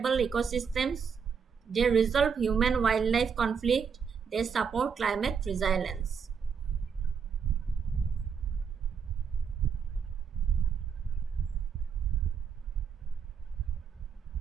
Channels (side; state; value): left; quieter; 6.5 dB